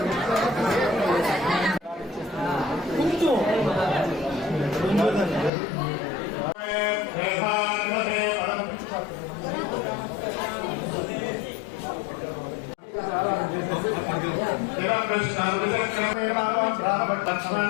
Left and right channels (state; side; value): drops out; right; at 5.5 s